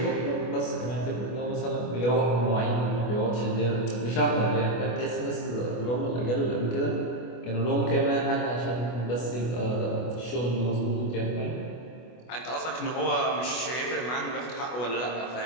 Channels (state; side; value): late; right; 25 ms